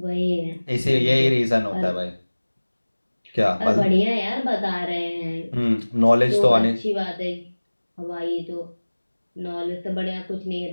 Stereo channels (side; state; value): both; inverted; correlation -1.00